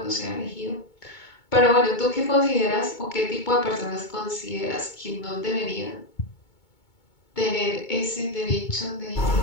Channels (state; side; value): late; right; 2.2 ms